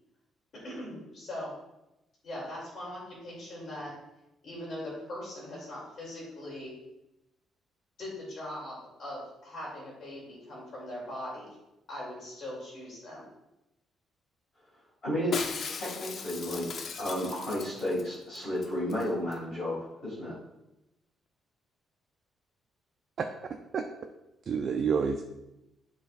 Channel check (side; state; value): both; normal; correlation 0.71